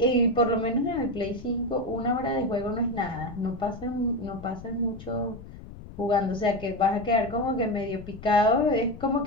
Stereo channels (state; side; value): noise; left; rumble, 15 dB below the sound